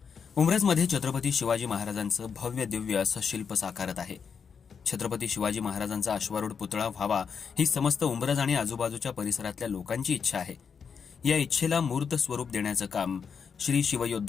उंब्रजमध्ये छत्रपती शिवाजी महाराजांचं भव्य दिव्य असं शिल्प साकारत आहे. छत्रपती शिवाजी महाराजांचा अश्वारूढ पुतळा व्हावा ही समस्त उंब्रज आणि आजूबाजूच्या परिसरातल्या लोकांची इच्छा आहे. या इच्छेला मूर्त स्वरूप देण्याचं काम श्री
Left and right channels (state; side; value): quieter; right; 6.3 dB